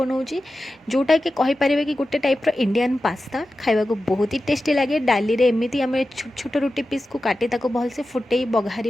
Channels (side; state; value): both; normal; correlation 0.93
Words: जोटा कि कहींपर कि गोटे टाइप्र इंडियन पास्ता खावा को बहुत ही टेस्टी लगे। डाली रे एमती आम छोट छोट रुटी पीस को काटी भलसे फुटे